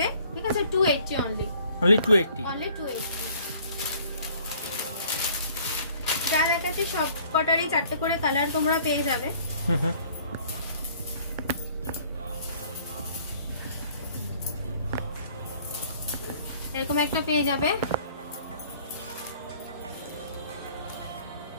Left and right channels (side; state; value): both; inverted; correlation -0.56